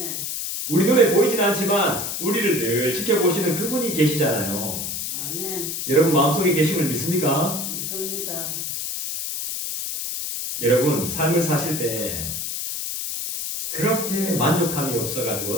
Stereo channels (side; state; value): left; noise; hiss, 4 dB below the sound